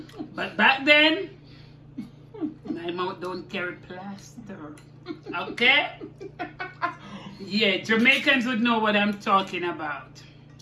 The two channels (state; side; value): identical; both; correlation 1.00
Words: But back then, my mouth don't carry plaster. Okay? Yeah, Jamaicans would know what I'm talking about.